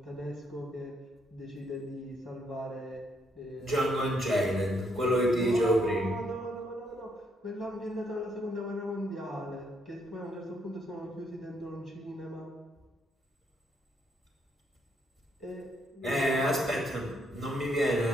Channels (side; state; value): both; normal; correlation 0.74